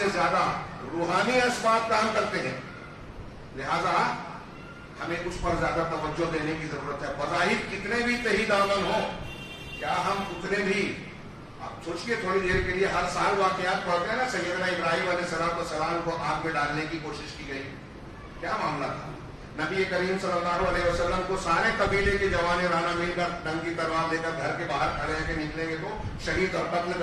زیادہ روحانی اسباب کام کرتے ہیں، لہذا ہمیں اس پر زیادہ توجہ دینے کی ضرورت ہے۔ بظاہر کتنے بھی تہی دامن ہو، کیا ہم اتنے بھی، آپ سوچئے تھوڑی دیر کے لیے، ہر سال واقعات پڑھتے ہیں نا، سیدنا ابراہیم علیہ السلام کو آگ میں ڈالنے کی کوشش کی گئی، کیا معاملہ تھا؟ نبی کریم صلی اللہ علیہ وسلم کو سارے قبیلے کے جوان رانا مل کر ننگی تلوار لے کر گھر کے باہر کھڑے ہیں کہ نکلیں گے تو شہید اور قتل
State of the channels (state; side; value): identical; both; correlation 1.00